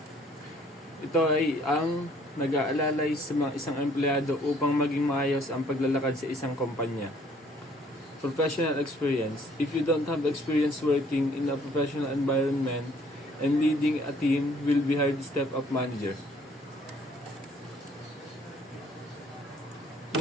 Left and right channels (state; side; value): normal; both; correlation 0.60